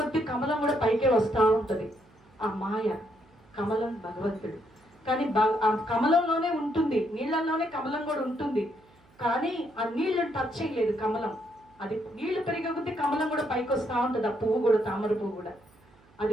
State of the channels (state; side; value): noise; right; hum, 30 dB below the sound